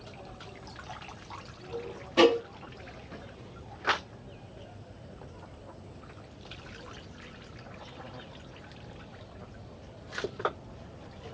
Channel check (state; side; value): identical; both; correlation 1.00